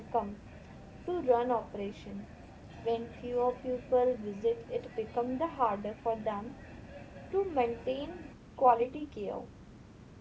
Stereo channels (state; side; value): identical; both; correlation 1.00